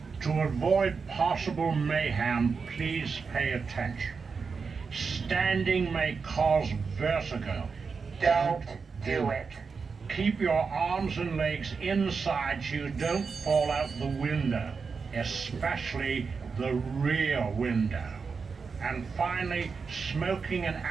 To avoid possible mayhem, please pay attention. Standing may cause vertigo. Don't do it. Keep your arms and legs inside so you don't fall out the window, especially the rear window. And finally, smoking and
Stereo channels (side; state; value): left; quieter; 5.2 dB